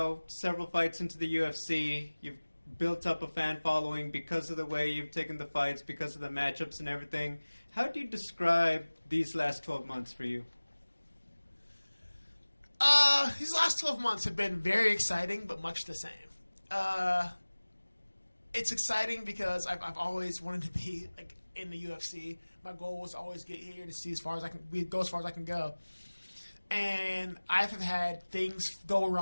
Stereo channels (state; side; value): inverted; both; correlation -1.00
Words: several fights into the UFC, you've built up a fan following because of the way you've taken the fights, because of the matchups and everything. How do you describe these last 12 months for you? These last 12 months have been very exciting, but much the same. It's exciting because I've always wanted to be like in the UFC. My goal was to always get here to see as far as I can go as far as I can go. And I've had things go